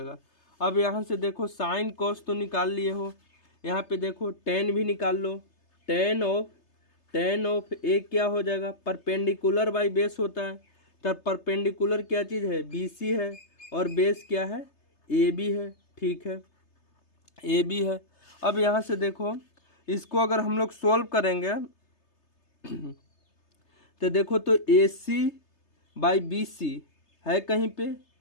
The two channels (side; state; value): right; late; 3.3 ms